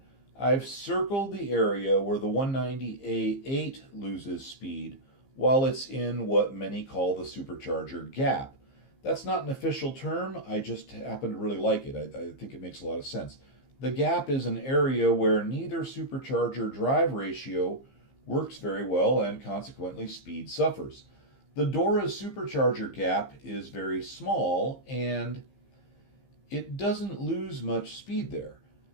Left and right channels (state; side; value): late; right; 15 ms